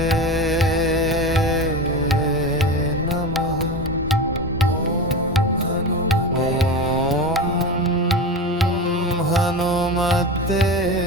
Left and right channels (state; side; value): normal; both; correlation 0.25